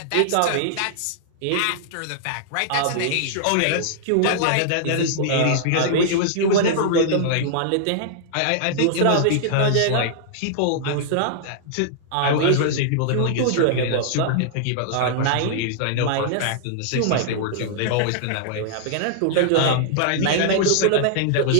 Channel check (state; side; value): different; both; correlation -0.01